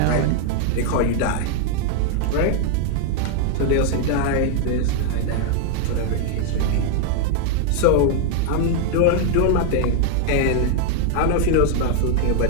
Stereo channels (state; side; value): different; both; correlation 0.00